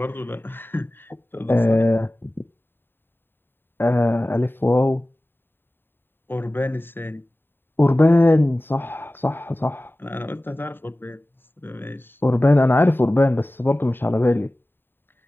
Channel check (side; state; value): right; late; 0.098 ms